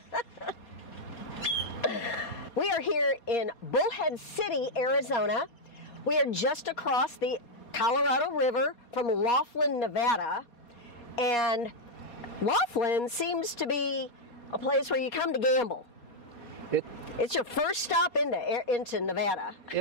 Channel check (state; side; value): late; right; 4.2 ms